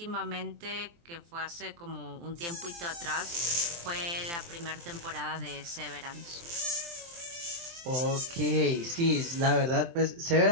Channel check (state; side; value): late; left; 23 ms